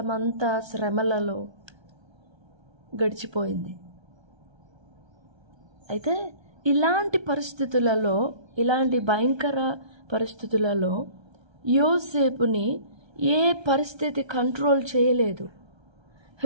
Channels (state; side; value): late; left; 1.3 ms